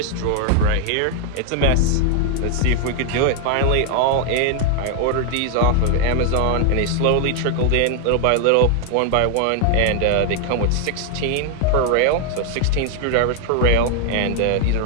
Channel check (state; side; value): different; both; correlation 0.00